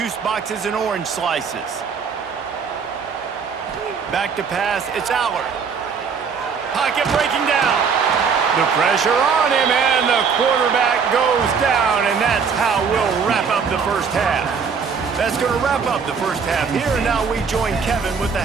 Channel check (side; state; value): left; quieter; 6.0 dB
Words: boxes and orange slices. Back to pass, it's Aller. Pocket breaking down. The pressure on him, and the quarterback goes down, and that's how we'll wrap up the first half. That's going to wrap up the first half here, and now we join Kevin with the